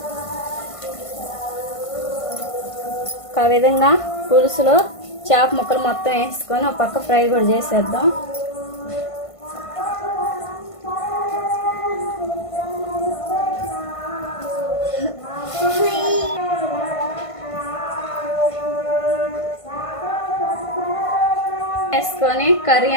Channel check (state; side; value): late; right; 1.5 ms